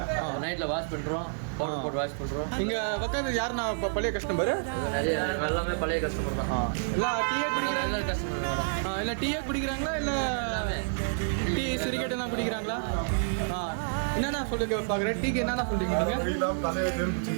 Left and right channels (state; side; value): silent; left; digital silence